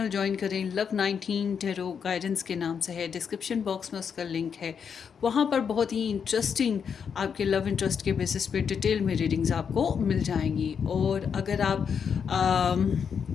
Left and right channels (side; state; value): right; quieter; 6.9 dB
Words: ज्वाइन करें। लव 19 टेरो गाइडेंस के नाम से है, डिस्क्रिप्शन बॉक्स में उसका लिंक है। वहाँ पर बहुत ही इंटरेस्टिंग आपके लव इंटरेस्ट के बेसिस पे डिटेल में रीडिंग्स आपको मिल जाएंगी। और अगर आप